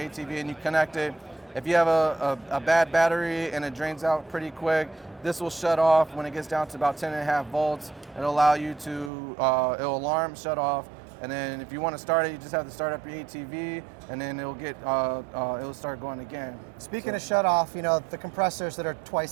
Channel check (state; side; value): drops out; left; at 9.1 s